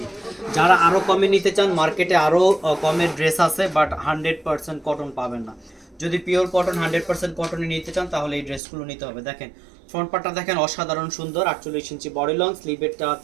যারা আরও কমে নিতে চান, মার্কেটে আরও কমের ড্রেস আছে, বাট 100% কটন পাবেন না। যদি পিওর কটন 100% কটনে নিতে চান তাহলে এই ড্রেসগুলো নিতে হবে। দেখেন ফ্রন্ট পার্টটা দেখেন অসাধারণ সুন্দর, 48 ইঞ্চি বডি লং, স্লিভেরটা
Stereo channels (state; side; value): drops out; left; at 8.6 s